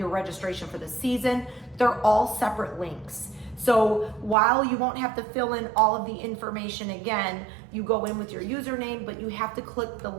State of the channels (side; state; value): left; drops out; at 4.4 s